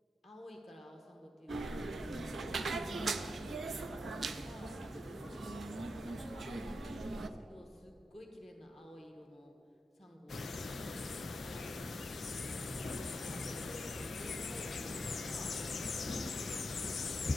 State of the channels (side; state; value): both; normal; correlation 0.86